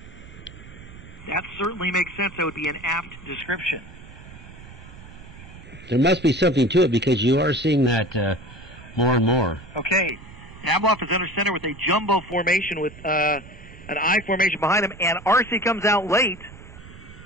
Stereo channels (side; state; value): right; noise; rumble, 18 dB below the sound